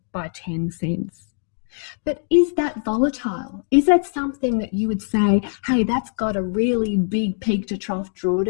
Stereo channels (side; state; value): right; silent; 63 dB below the other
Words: by 10 cents. But is that volatile? Is that something that you would say, hey, that's got a really big peak to trough